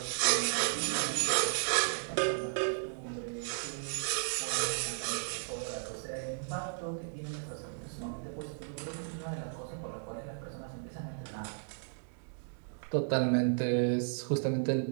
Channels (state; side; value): silent; left; digital silence